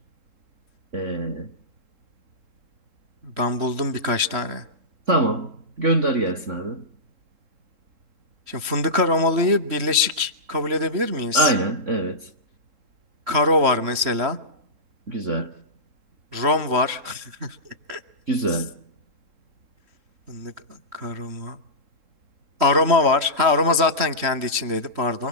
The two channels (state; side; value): late; left; 3.7 ms